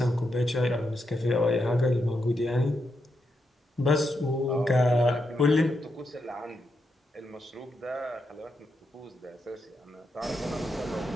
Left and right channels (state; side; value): normal; both; correlation 0.83